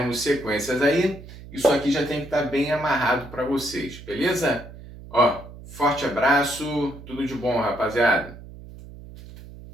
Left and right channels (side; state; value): right; noise; hum, 16 dB below the sound